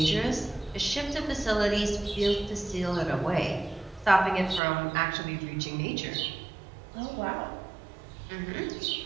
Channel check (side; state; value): left; drops out; at 4.6 s